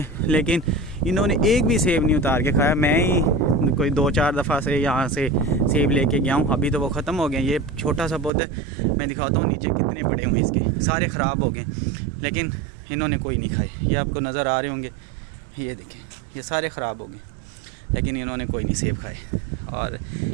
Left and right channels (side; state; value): left; drops out; at 8.3 s